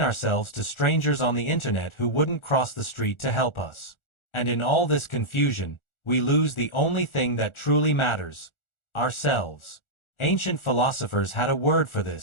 ourselves to strangers on the internet who wouldn't cross the street to help us. And in all this confusion, we lose the only thing that truly matters: ourselves. Ancient philosophers had a word for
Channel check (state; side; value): late; right; 1.4 ms